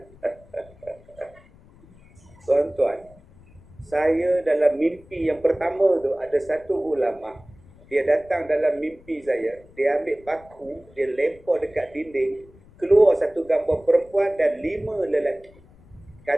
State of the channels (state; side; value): noise; left; rumble, 25 dB below the sound